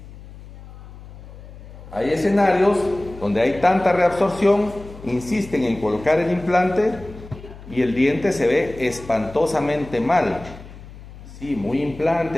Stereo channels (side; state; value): left; noise; hum, 17 dB below the sound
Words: Hay escenarios donde hay tanta reabsorción, insisten en colocar el implante y el diente se ve espantosamente mal. Sí, muy